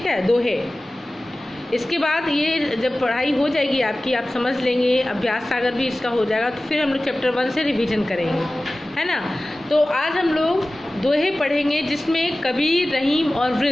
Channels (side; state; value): both; normal; correlation 0.97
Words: है, दोहे। इसके बाद ये जब पढ़ाई हो जाएगी आपकी, आप समझ लेंगे, अभ्यास सागर भी इसका हो जाएगा, तो फिर हम लोग चैप्टर 1 से रिवीजन करेंगे, है ना। तो आज हम लोग दोहे पढ़ेंगे जिसमें कबीर, रहीम और